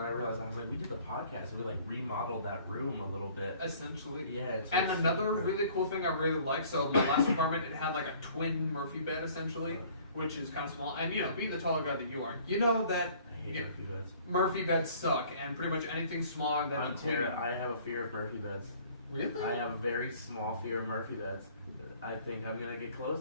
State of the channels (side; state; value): both; inverted; correlation -0.54